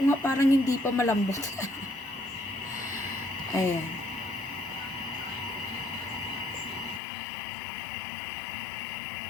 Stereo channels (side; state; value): right; drops out; at 7.0 s